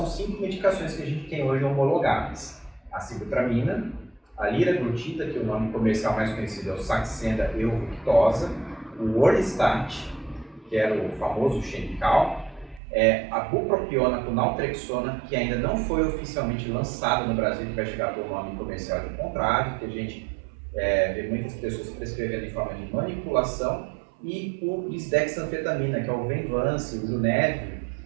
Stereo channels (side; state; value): left; drops out; at 12.8 s